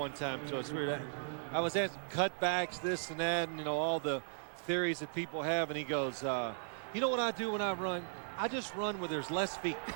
time to us. I was asked cutbacks, this and that, and, you know, all the theories that people have, and he goes, you know what I do when I run? I just run where there's less feet.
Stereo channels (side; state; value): left; silent; 53 dB below the other